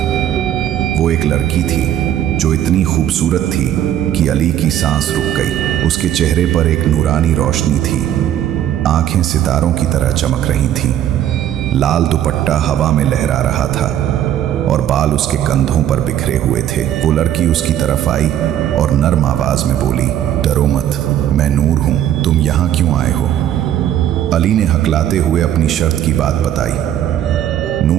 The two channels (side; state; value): left; quieter; 11.1 dB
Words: वो एक लड़की थी जो इतनी खूबसूरत थी कि अली की सांस रुक गई। उसके चेहरे पर एक नूरानी रोशनी थी, आंखें सितारों की तरह चमक रही थीं। लाल दुपट्टा हवा में लहरा रहा था और बाल उसके कंधों पर बिखरे हुए थे। वो लड़की उसकी तरफ आई और नर्म आवाज में बोली, डरो मत, मैं नूर हूं, तुम यहाँ क्यों आए हो? अली ने हकलाते हुए अपनी शर्त की बात बताई।